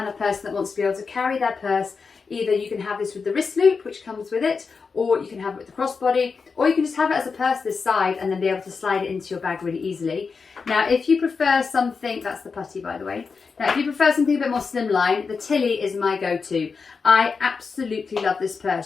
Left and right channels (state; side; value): quieter; right; 5.0 dB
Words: of person that wants to be able to carry their purse, either you can have this with the wrist loop, which comes with it, or you can have it with the crossbody, or you can just have it as a purse this side and then be able to slide it into your bag really easily. Now, if you prefer something, that's the putty by the way. Now, if you prefer something a bit more slimline, the Tilly is my go-to. I absolutely love this